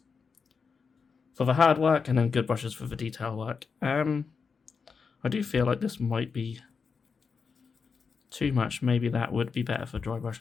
for the hard work and then good brushes for the detail work. I do feel like this might be too much. Maybe that would be better for dry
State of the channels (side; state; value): right; quieter; 5.4 dB